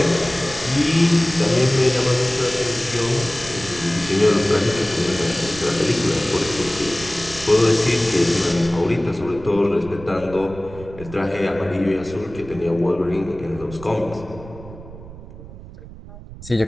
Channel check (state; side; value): noise; right; rumble, 16 dB below the sound